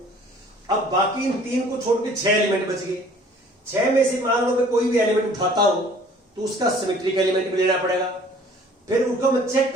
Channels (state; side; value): normal; both; correlation 0.52